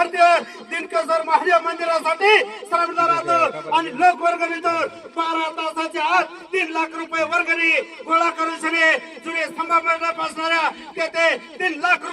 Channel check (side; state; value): both; identical; correlation 1.00